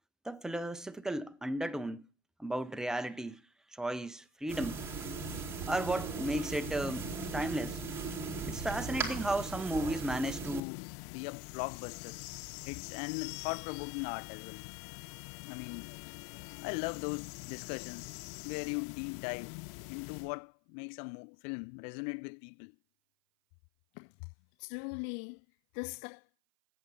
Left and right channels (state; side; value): drops out; right; at 10.6 s